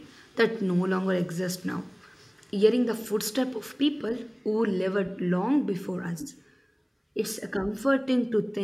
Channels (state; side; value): identical; both; correlation 1.00